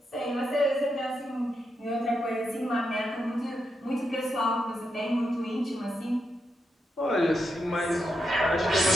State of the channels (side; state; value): both; normal; correlation 0.84